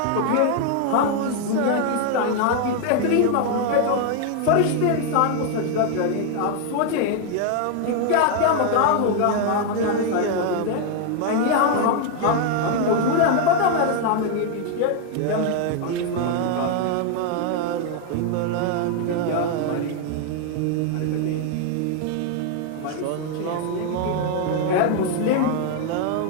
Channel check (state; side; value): different; both; correlation 0.00